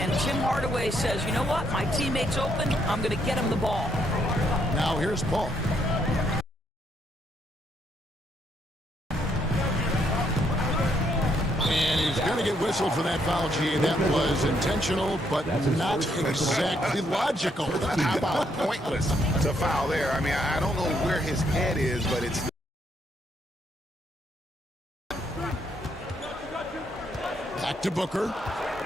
Tim Hardaway says, you know what, my teammate's open, I'm going to get him the ball. Now here's Paul. And he's going to get whistled for that foul, G. That was intentional, but not exactly logical. How about pointless to foul there? I mean, I don't know where his head is, but it's... Back to Booker.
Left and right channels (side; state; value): both; normal; correlation 0.73